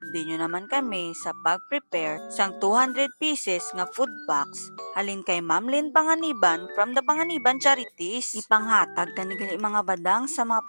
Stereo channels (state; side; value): inverted; both; correlation -1.00